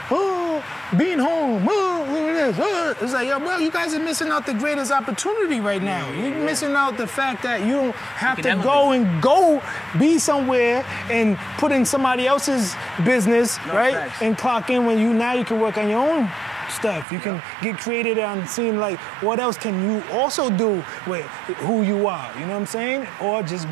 oh, being home, oh, look at this. Oh. It's like, yo, bro, you guys are missing out the greatest opportunity right now. You're missing out the fact that you don't have to go be somewhere and put in somebody else's business, right? Facts. And clock in when now you can work on your own stuff. You can get creative on seeing like what else can you also do with who you are. You know what I'm saying? Or just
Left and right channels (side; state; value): left; drops out; at 17.1 s